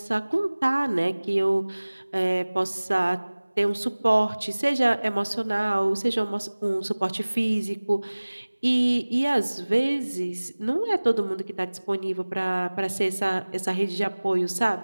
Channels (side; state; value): both; inverted; correlation -1.00